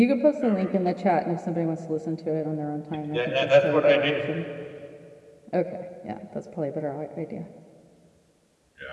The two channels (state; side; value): identical; both; correlation 1.00